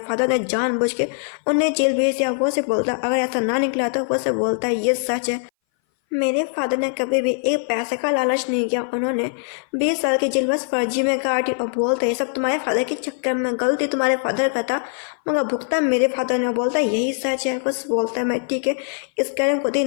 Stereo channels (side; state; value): right; silent; 60 dB below the other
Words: फादर ने जानबूझ के उन्हें जेल भेज दिया। वो से बोलता अगर ऐसा ना निकला तो वो से बोलता है ये सच है, मेरे फादर ने कभी भी एक पैसे का लालच नहीं किया, उन्होंने 20 साल की जेल बस फर्जी में काटी। और बोलते ये सब तुम्हारे फादर के चक्कर में, गलती तुम्हारे फादर का था मगर भुगतान मेरे फादर ने। बोलता है यही सच है। बस बोलता है मैं ठीक है इसके बारे में खुद ही